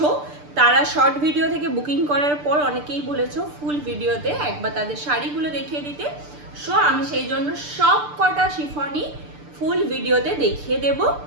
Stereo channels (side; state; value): left; late; 6.8 ms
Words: তারা শর্ট ভিডিও থেকে বুকিং করার পর অনেকেই বলেছো ফুল ভিডিওতে একবার তাদের শাড়িগুলো দেখিয়ে দিতে। সো আমি সেই জন্য সব কটা শিফনই ফুল ভিডিওতে দেখিয়ে দেব।